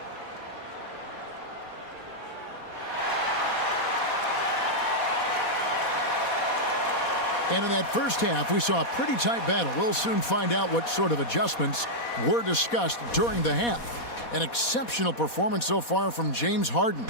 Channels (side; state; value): right; late; 4.2 ms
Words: And in that first half, we saw a pretty tight battle. We'll soon find out what sort of adjustments were discussed during the half. An exceptional performance so far from James Harden.